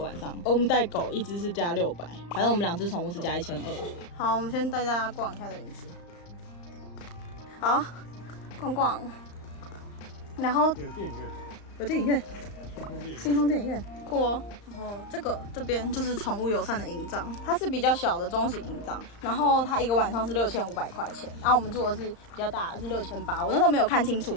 晚上，我们带狗1只是加600，反正我们2只宠物是加1200。好，我们先带大家逛一下这园区。好，逛逛，然后有电影院，有电影院，星空电影院，酷哦。然后这边就是宠物友善的营帐，它是比较小的中型营帐，然后它一个晚上是6500块钱，然后我们住的是比较大的是6800，我那时候没有看清楚，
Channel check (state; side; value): late; right; 35 ms